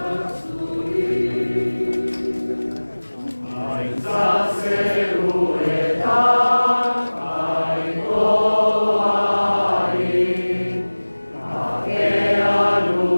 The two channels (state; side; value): inverted; both; correlation -1.00